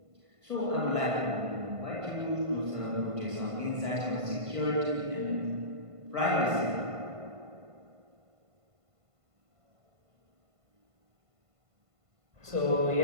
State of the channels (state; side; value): late; left; 1.5 ms